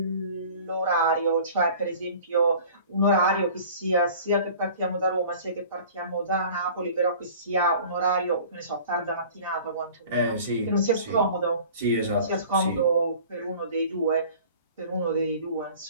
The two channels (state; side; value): inverted; both; correlation -0.45